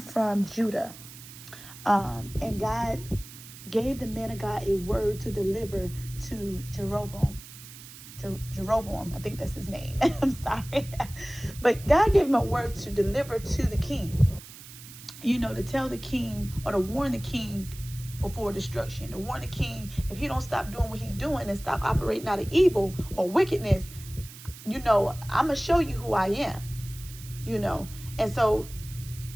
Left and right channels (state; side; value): noise; right; hiss, 16 dB below the sound